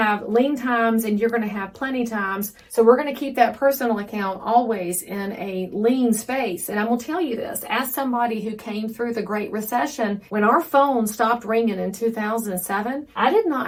lean times and you're going to have plenty times. So we're going to keep that personal account always in a lean space. And I will tell you this, as somebody who came through the Great Recession, when our phone stopped ringing in 2007, I did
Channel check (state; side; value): identical; both; correlation 1.00